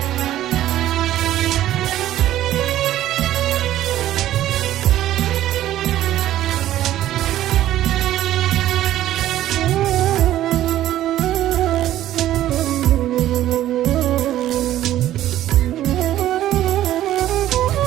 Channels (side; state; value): left; quieter; 13.2 dB